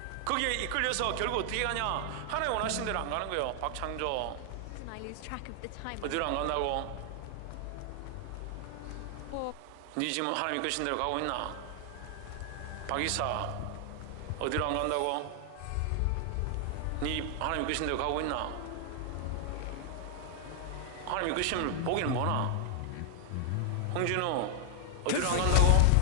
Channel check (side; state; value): both; different; correlation 0.00